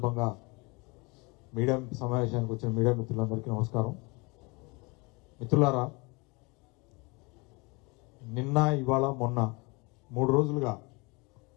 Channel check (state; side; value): quieter; right; 27.6 dB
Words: మీడియా సమావేశానికి వచ్చిన మీడియా మిత్రులందరికీ నమస్కారం. మిత్రులారా, నిన్న ఇవాళ మొన్న 3 రోజులుగా